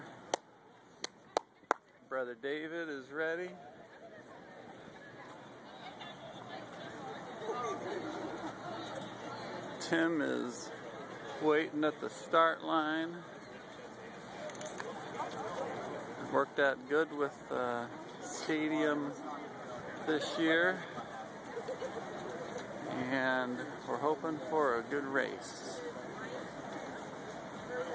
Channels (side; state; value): both; identical; correlation 1.00